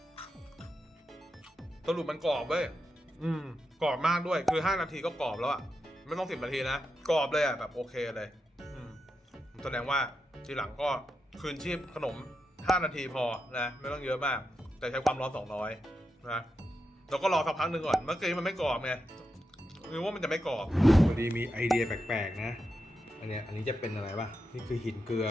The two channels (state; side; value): normal; both; correlation 0.87